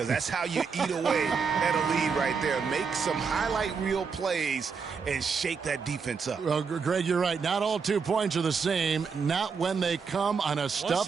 that's how you eat away at a lead right there. Make some highlight reel plays and shake that defense up. Well, Greg, you're right. Not all 2 points are the same. Not when they come on a stuff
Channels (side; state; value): left; quieter; 5.6 dB